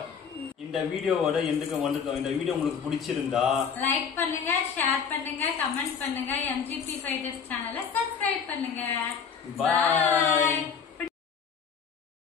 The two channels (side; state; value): right; quieter; 6.5 dB